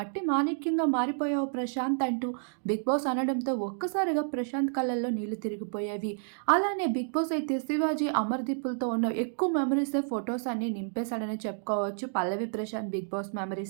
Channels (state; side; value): silent; left; digital silence